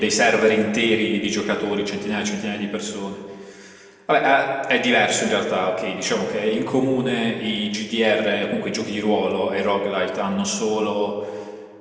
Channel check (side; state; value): both; identical; correlation 1.00